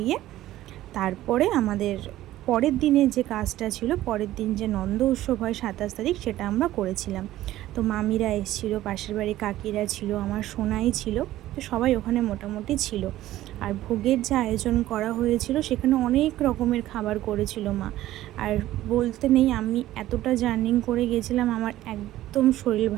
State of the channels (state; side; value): quieter; left; 14.7 dB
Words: তারপরে আমাদের পরের দিনে যে কাজটা ছিল, পরের দিন যে নন্দ উৎসব হয় 27 তারিখ, সেটা আমরা করেছিলাম। তো মামিরা এসেছিলো, পাশের বাড়ি কাকিরা ছিল, আমার সোনাই ছিল, তো সবাই ওখানে মোটামুটি ছিল। আর ভোগের যে আয়োজন করা হয়েছিল সেখানে অনেক রকমের খাবার করেছিল মা। আর বলতে নেই, আমি এতটা জার্নিং করে গেছিলাম, আমার একদম শরীর